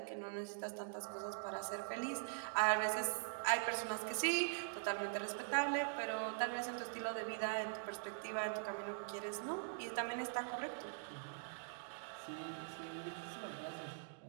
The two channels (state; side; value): silent; left; digital silence